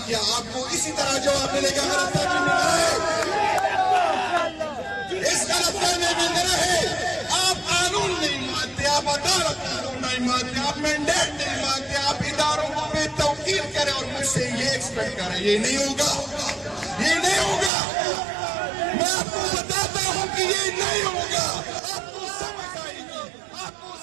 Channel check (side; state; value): left; drops out; at 17.7 s